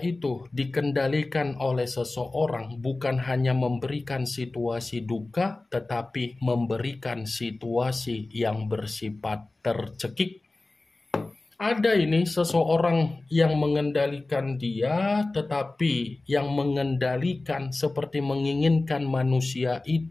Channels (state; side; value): quieter; right; 3.1 dB